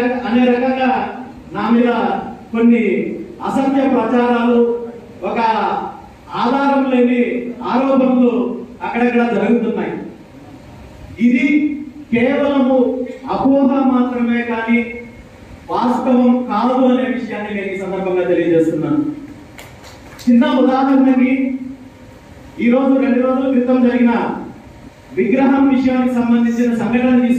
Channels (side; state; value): both; identical; correlation 1.00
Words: రకంగా నా మీద కొన్ని అసత్య ప్రచారాలు, ఒక ఆధారం లేని ఆరోపణలు అక్కడక్కడ జరుగుతున్నాయి. ఇది కేవలము అపోహ మాత్రమే కానీ వాస్తవం కాదు అనే విషయాన్ని నేను ఈ సందర్భంగా తెలియజేస్తున్నాను. చిన్న ఉదాహరణకి ఈరోజు 2 రోజుల క్రితం జరిగిన విగ్రహం విషయానికి సంబంధించిన సంఘటన